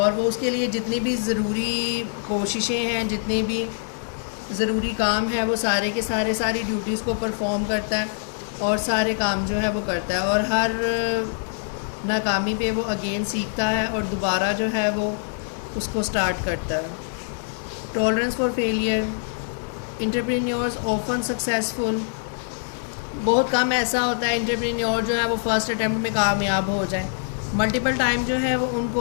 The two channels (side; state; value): right; silent; 62 dB below the other